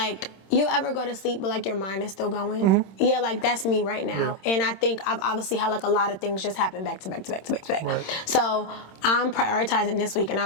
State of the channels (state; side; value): late; right; 26 ms